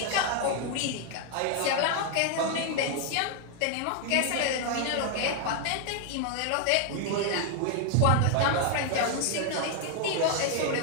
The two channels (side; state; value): both; different; correlation 0.00